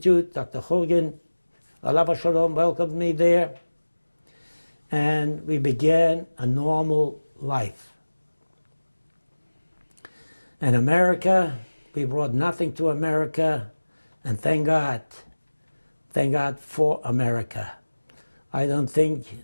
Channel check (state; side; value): inverted; both; correlation -1.00